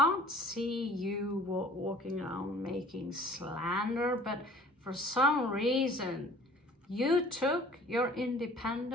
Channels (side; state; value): both; normal; correlation 0.49